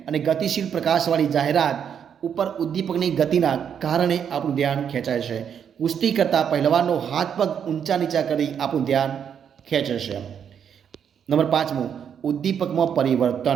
અને ગતિશીલ પ્રકાશવાળી જાહેરાત ઉપર ઉદ્દીપકની ગતિના કારણે આપણું ધ્યાન ખેંચાય છે. કુસ્તી કરતા પહેલવાનનો હાથ પગ ઊંચા નીચા કરી આપણું ધ્યાન ખેંચે છે. નંબર 5, ઉદ્દીપકમાં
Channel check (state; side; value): quieter; left; 8.1 dB